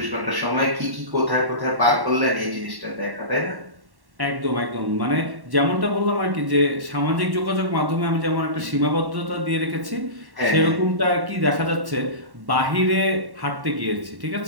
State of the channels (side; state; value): left; late; 1.1 ms